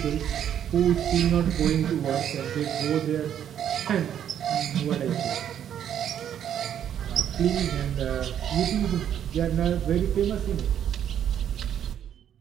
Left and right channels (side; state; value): left; quieter; 9.7 dB